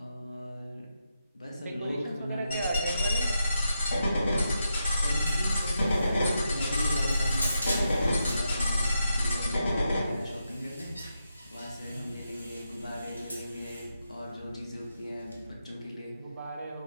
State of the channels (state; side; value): inverted; both; correlation -0.84